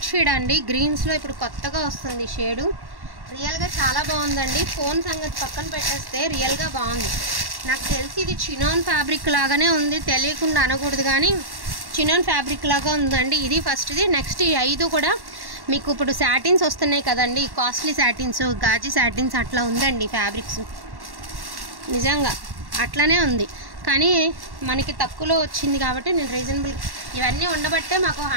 షేడ్ అండి, గ్రీన్స్లో ఇప్పుడు కొత్తగా వస్తుంది షేడు. రియల్గా చాలా బాగుందండి. ఫోన్ సంగతి పక్కన పెట్టేస్తే రియల్గా బాగుంది. నాకు తెలిసి ఇది చినాన్ ఫ్యాబ్రిక్ లాగానే ఉంది, తెలియకుండా అనకూడదు కానీ చినాన్ ఫ్యాబ్రిక్ లాగా ఉందండి. ఇది ఫస్ట్ది. నెక్స్ట్ ఈ 5 కూడా మీకు ఇప్పుడు శాటిన్స్ వస్తున్నాయి కదండి, కాస్ట్లీ శాటిన్స్, గాజీ శాటిన్స్ అట్లా ఉందండి ఫ్యాబ్రిక్స్. నిజంగా అట్లానే ఉంది, కానీ మనకి తక్కువలో వచ్చింది కాబట్టి నేను రీజనబుల్. ఇవన్నీ ఉండబట్టే మాకు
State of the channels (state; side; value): late; left; 1.1 ms